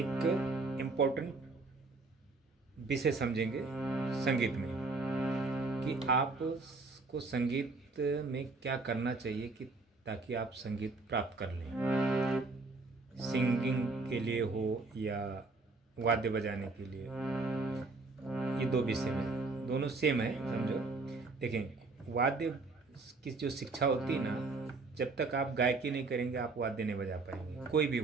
इम्पोर्टेंट विषय समझेंगे संगीत में, कि आपको संगीत में क्या करना चाहिए कि ताकि आप संगीत प्राप्त कर लें। सिंगिंग के लिए हो या वाद्य बजाने के लिए, ये दो विषय में दोनों सेम है, समझो। देखें, वाद्य की जो शिक्षा होती है ना, जब तक आप गायकी नहीं करेंगे आप वाद्य नहीं बजा पाएंगे। कोई भी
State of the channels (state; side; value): quieter; left; 3.6 dB